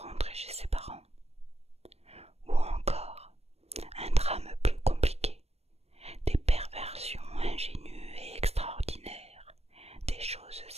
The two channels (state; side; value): late; left; 0.30 ms